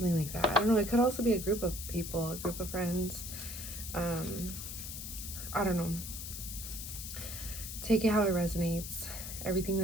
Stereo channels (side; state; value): left; noise; hiss, 8 dB below the sound